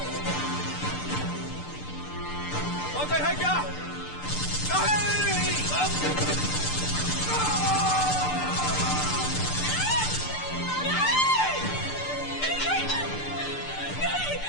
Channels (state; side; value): late; right; 6.7 ms